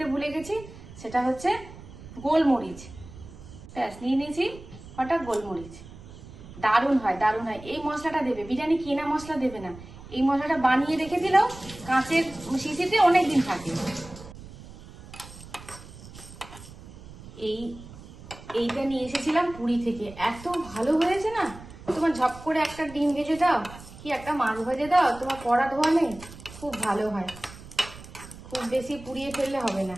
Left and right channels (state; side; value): noise; right; rumble, 17 dB below the sound